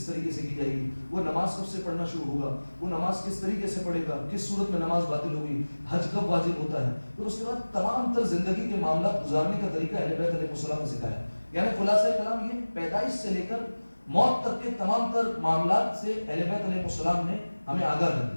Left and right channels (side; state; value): both; inverted; correlation -1.00